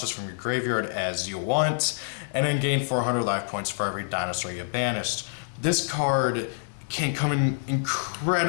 from your graveyard as you want, and then gain 400 life points for every dinosaur you banished. This card can come in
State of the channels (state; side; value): silent; right; digital silence